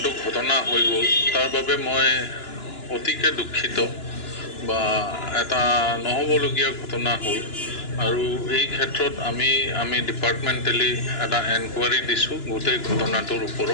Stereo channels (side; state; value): right; late; 2.9 ms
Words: ঘটনা হৈ গ'ল তাৰ বাবে মই অতিকে দুখিত বা এটা নহ'বলগীয়া ঘটনা হ'ল আৰু এই ক্ষেত্ৰত আমি ডিপাৰ্টমেণ্টেলি এটা এনকুৱাৰী দিছোঁ গোটেই ঘটনাটোৰ